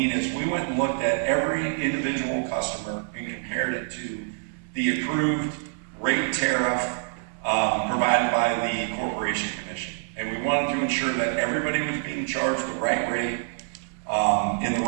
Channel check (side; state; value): left; silent; 61 dB below the other